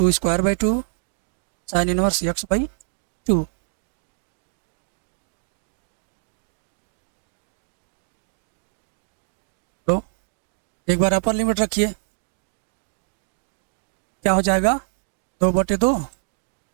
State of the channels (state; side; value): silent; left; digital silence